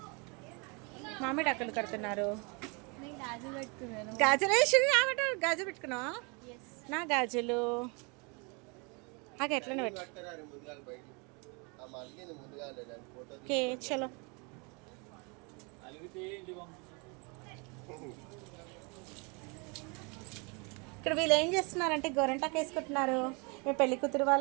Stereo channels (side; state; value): left; quieter; 31.6 dB